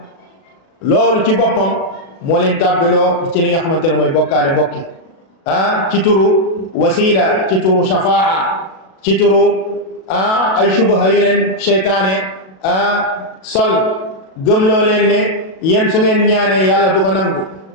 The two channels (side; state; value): right; late; 37 ms